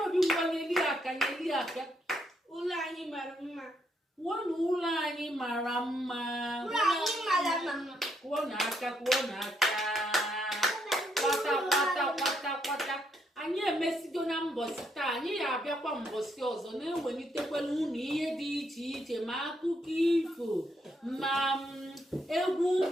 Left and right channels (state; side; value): normal; both; correlation 0.75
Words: Obi ngwa nyeli aka ụlọ anyị mara mma kwuo na ụlọ anyị mara mma kwuo na aka kwata anyị emesigo na mbọsị taa anyị ga-abịakwa mbọsị ọzọ na-ewelitekwala unu ihe dị iche iche ma akụkọ ifo ma egwu